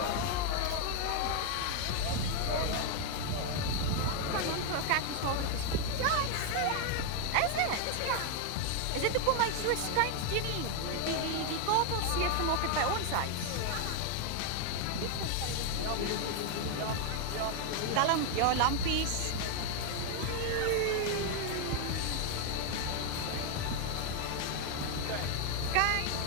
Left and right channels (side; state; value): both; different; correlation 0.01